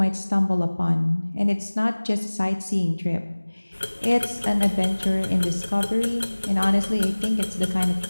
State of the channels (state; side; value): inverted; both; correlation -1.00